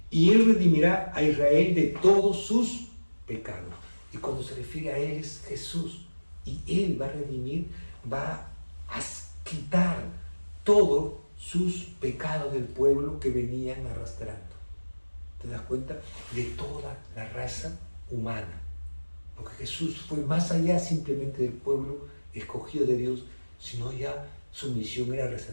y él redimirá a Israel de todos sus pecados. Y cuando se refiere a él es Jesús, y él va a redimir, va a quitar todos sus pecados del pueblo que venían arrastrando. ¿Te das cuenta? De toda la raza humana. Porque Jesús fue más allá simplemente del pueblo escogido de Dios, sino ya su misión era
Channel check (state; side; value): inverted; both; correlation -1.00